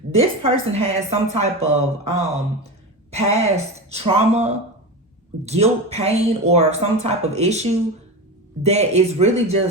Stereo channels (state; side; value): normal; both; correlation 0.23